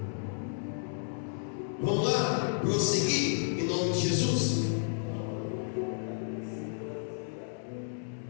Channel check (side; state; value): right; silent; digital silence